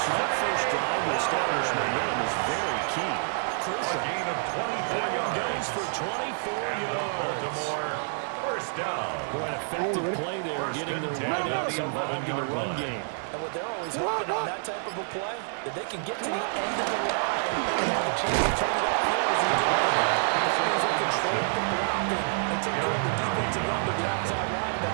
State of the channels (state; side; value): silent; left; 59 dB below the other